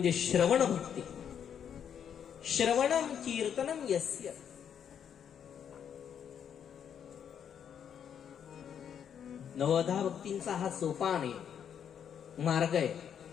श्रवण भक्ती. श्रवणम कीर्तनम यस्य. नवदा भक्तींचा हा सोपान आहे, मार्ग आहे.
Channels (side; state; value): right; quieter; 8.4 dB